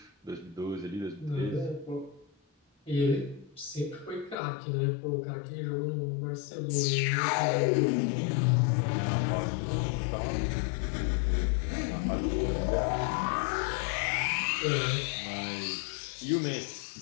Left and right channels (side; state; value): right; drops out; at 4.4 s